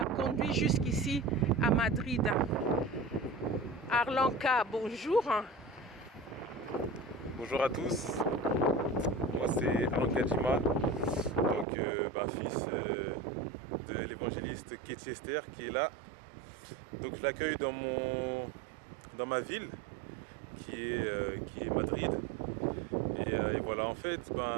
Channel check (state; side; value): drops out; left; at 11.7 s